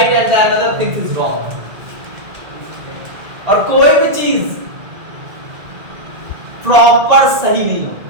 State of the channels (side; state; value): left; late; 1.8 ms